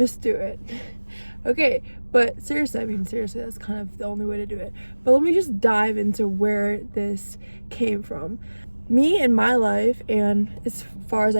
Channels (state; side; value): inverted; both; correlation -1.00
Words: do it. Okay, but seriously, that's kind of the only way to do it. But let me just dive into where this came from. Me in my life, and as far as